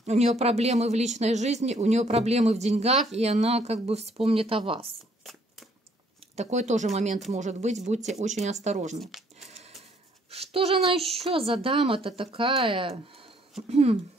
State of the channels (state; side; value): normal; both; correlation 0.64